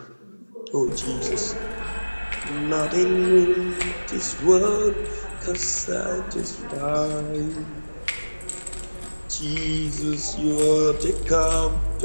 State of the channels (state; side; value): inverted; both; correlation -1.00